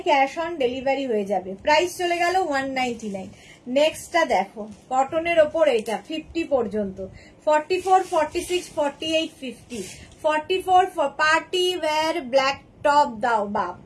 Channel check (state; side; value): identical; both; correlation 1.00